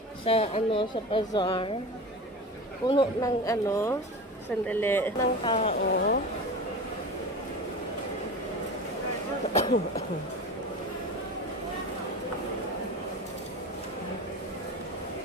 sa bazaar. Puno ng sandali, ng tao.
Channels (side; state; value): both; normal; correlation 0.31